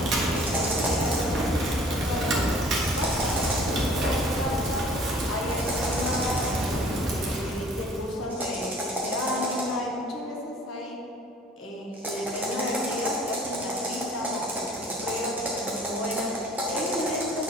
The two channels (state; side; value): normal; both; correlation 0.51